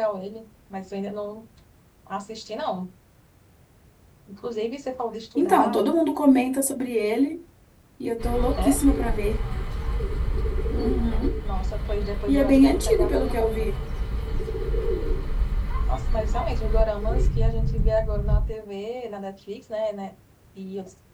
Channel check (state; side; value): identical; both; correlation 1.00